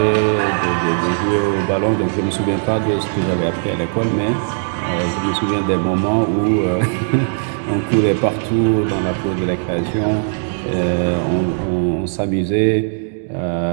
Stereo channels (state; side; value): silent; left; digital silence